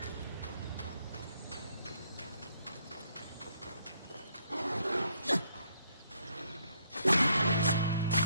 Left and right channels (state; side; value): inverted; both; correlation -0.70